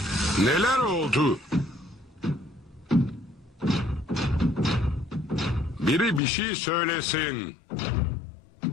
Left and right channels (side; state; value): right; drops out; at 6.2 s